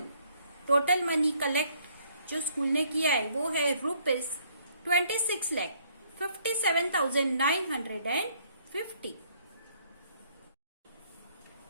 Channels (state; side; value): inverted; both; correlation -0.65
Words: Total money collect जो स्कूल ने किया है वो है rupees 26,57,950।